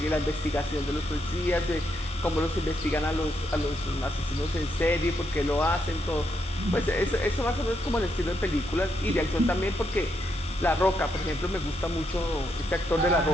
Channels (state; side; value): normal; both; correlation 0.79